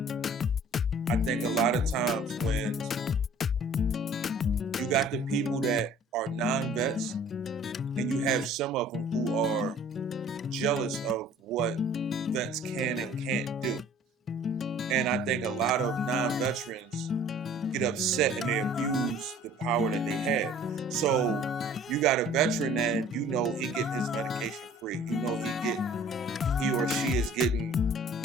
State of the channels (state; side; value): normal; both; correlation 0.51